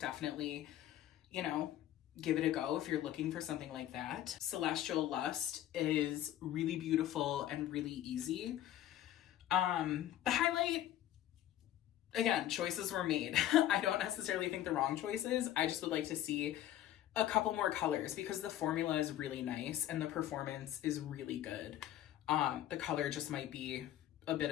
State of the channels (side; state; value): right; quieter; 12.6 dB